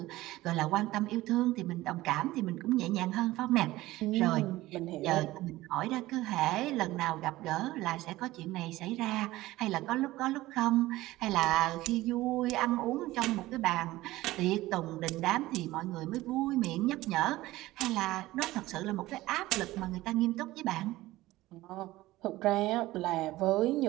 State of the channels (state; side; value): quieter; left; 17.5 dB